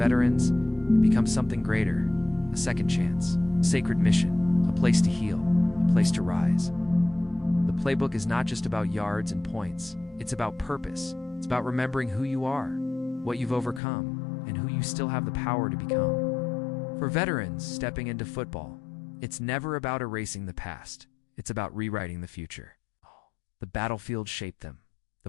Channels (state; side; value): drops out; right; at 13.8 s